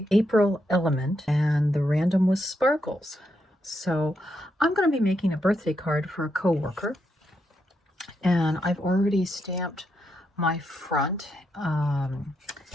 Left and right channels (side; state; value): both; normal; correlation 0.81